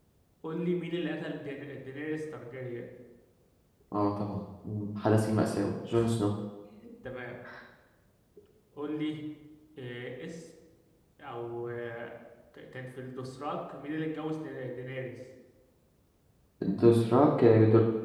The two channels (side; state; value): both; identical; correlation 1.00